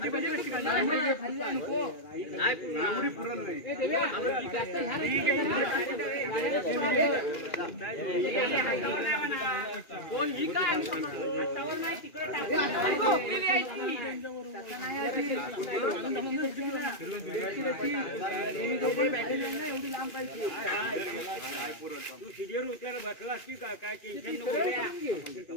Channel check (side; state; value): right; late; 2.4 ms